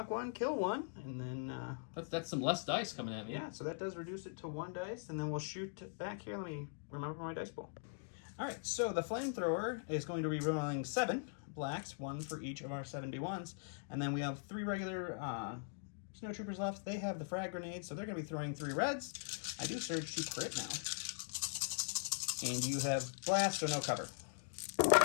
one, kill one, and then... That's some less dice coming at me. Yeah, so that does reduce it to 1 dice, and then we'll shoot back here. Let me remember my dice pool. All right, so the flamethrower is going to be rolling 7 blacks, 1 for each of our 71s, and then we have 3 regular snowtroopers left. They have the frag grenades, so they're going to be throwing 3 reds. I do surge to crit now. And you have blast, so no cover.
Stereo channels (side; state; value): right; silent; digital silence